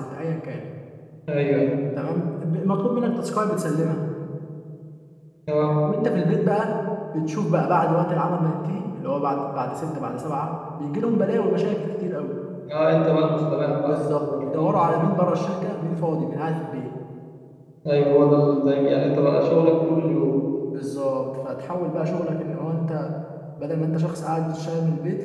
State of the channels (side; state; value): both; identical; correlation 1.00